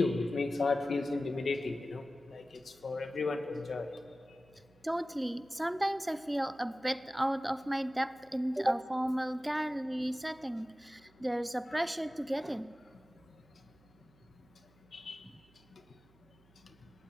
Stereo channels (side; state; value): right; noise; hum, 30 dB below the sound